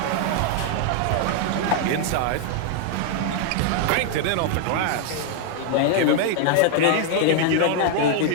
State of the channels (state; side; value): different; both; correlation 0.00